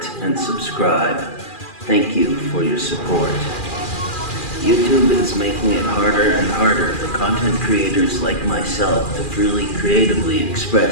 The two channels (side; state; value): right; late; 2.4 ms